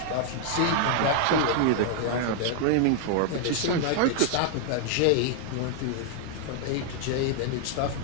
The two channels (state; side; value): different; both; correlation 0.00